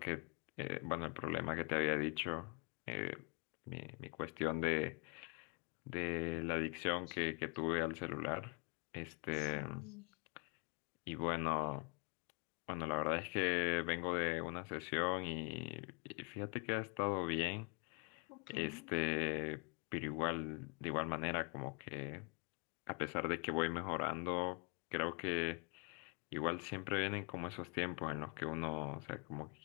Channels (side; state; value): right; quieter; 35.2 dB